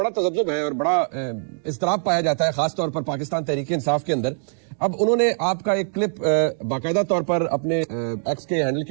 تذبذب ہے اور بڑا اضطراب پایا جاتا ہے, خاص طور پر پاکستان تحریک انصاف کے اندر. اب انہوں نے آپ کا ایک کلپ باقاعدہ طور پر اپنے ایکس کے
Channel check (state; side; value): silent; left; digital silence